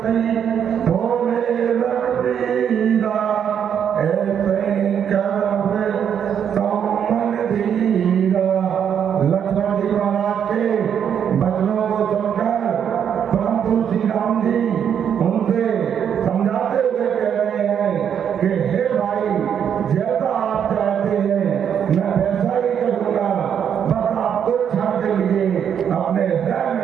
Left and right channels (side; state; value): left; quieter; 8.4 dB